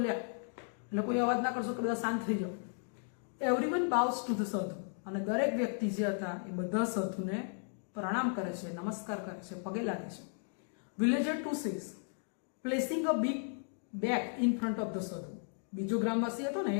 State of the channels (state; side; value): silent; right; 54 dB below the other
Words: એટલે કોઈ અવાજ ના કરશો કે બધા શાંત થઈ જાઓ. એવરીવન બાઉસ ટુ ધ સાધુ. અને દરેક વ્યક્તિ જે હતા એ બધા સાધુને પ્રણામ કરે છે, નમસ્કાર કરે છે, પગે લાગે છે. Villager 2 says placing a big bag in front of the સાધુ. બીજો ગ્રામવાસી હતો ને